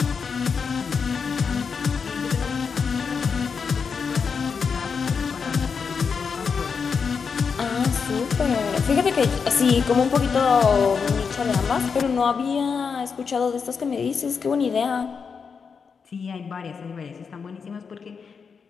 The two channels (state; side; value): quieter; right; 5.8 dB